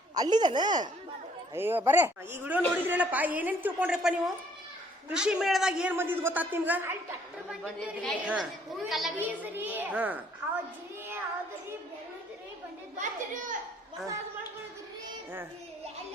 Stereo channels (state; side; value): normal; both; correlation 0.63